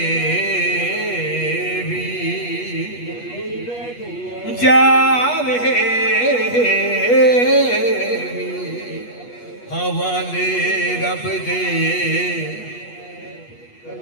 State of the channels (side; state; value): right; late; 8.3 ms